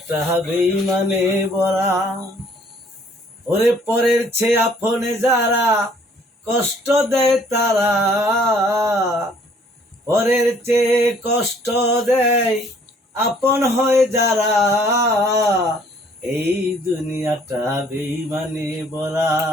বেঈমানে ভরা। ওরে পরের চেয়ে আপনে যারা কষ্ট দেয় তারা, পরের চেয়ে কষ্ট দেয় আপন হয় যারা, এই দুনিয়াটা বেঈমানে ভরা,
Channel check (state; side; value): normal; both; correlation 0.60